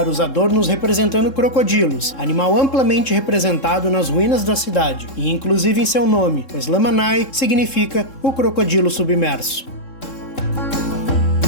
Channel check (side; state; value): right; late; 3.7 ms